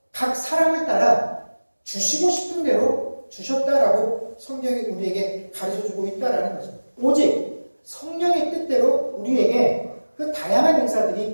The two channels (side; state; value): both; inverted; correlation -1.00